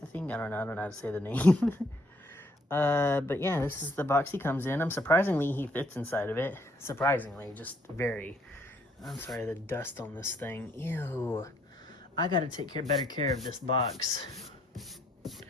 I think. I don't know how to say the name. But yeah, this is the box he comes in. Surprisingly, he fits inside of it. Surprisingly, just very. I'm sorry, the dust on this thing. Ew. I gotta take better care of this box.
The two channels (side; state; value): both; normal; correlation 0.67